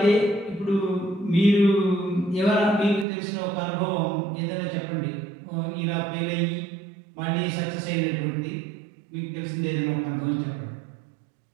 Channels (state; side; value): drops out; left; at 3.1 s